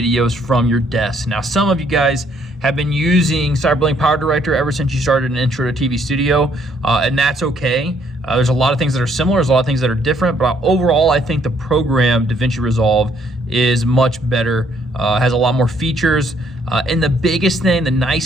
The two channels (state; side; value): normal; both; correlation 0.67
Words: from your desk. Now, some of you guys have been using CyberLink Power Director ever since you started an Intro to TV Studio, and that's okay. There's a lot of things that are similar, there's a lot of things that are different, but overall, I think the program Davinci Resolve is much better, has a lot more features, and the biggest thing, the